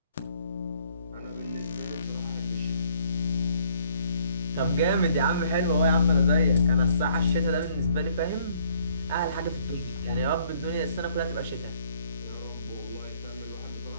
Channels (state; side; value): inverted; both; correlation -0.63